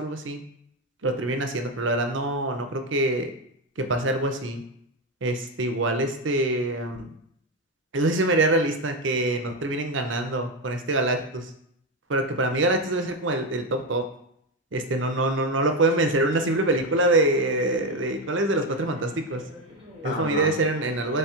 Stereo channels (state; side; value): normal; both; correlation 0.11